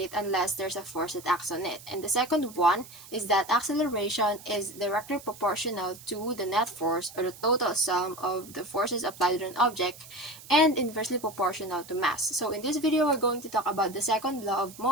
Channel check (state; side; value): noise; right; hiss, 18 dB below the sound